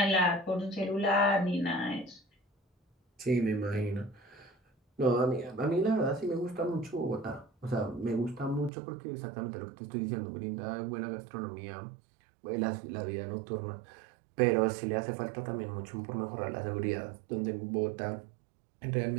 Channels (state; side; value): drops out; left; at 8.7 s